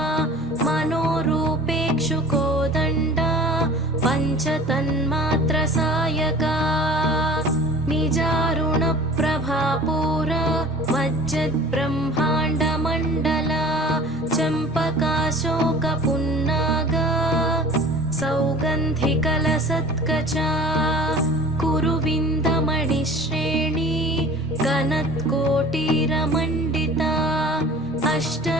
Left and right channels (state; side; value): normal; both; correlation 0.43